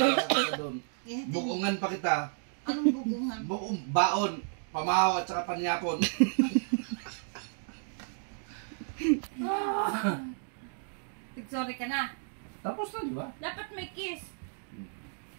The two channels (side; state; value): left; silent; digital silence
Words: doon? Bukungan pa kita. Anong bugungan? Baon, pamahaw at saka panyapon. Magsuri ka na. Tapos na, di ba? Dapat may kiss.